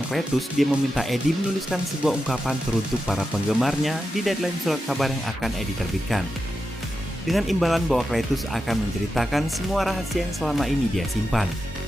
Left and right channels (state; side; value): normal; both; correlation 0.89